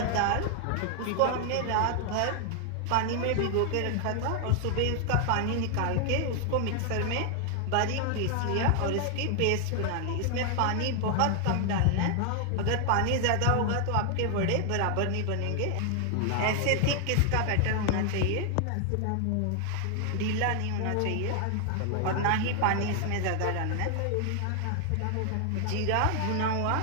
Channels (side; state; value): both; different; correlation 0.00